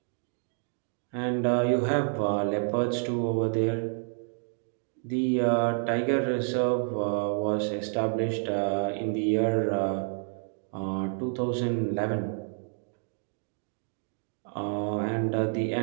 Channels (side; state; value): left; silent; 58 dB below the other